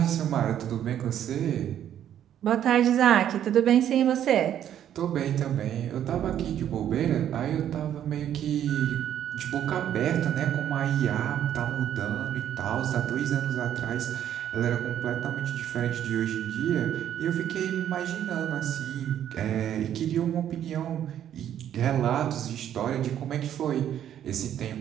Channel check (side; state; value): left; quieter; 10.4 dB